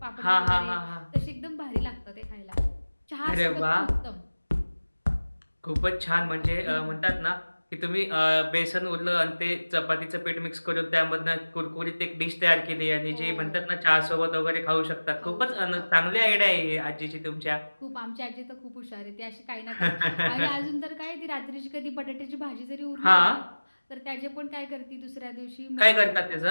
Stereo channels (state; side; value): inverted; both; correlation -1.00